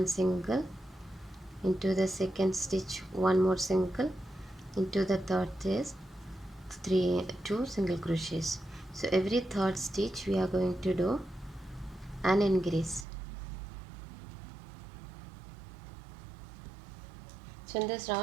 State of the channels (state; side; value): drops out; left; at 13.1 s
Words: single, into the second stitch 1 more single, into the third is 2 single crochets. So every third stitch we are going to do an increase. So in this